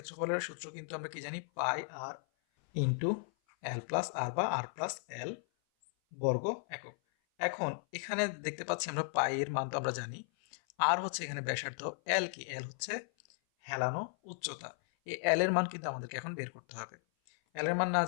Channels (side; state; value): right; silent; 54 dB below the other